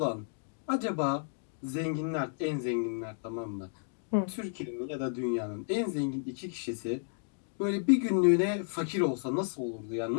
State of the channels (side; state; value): right; silent; digital silence